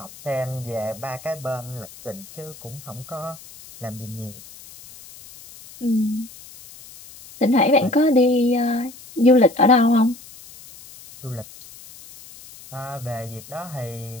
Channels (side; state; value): left; noise; hiss, 19 dB below the sound